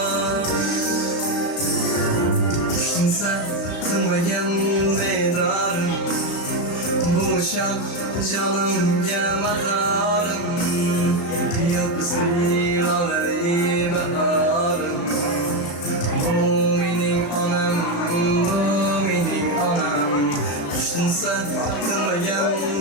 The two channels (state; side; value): late; right; 35 ms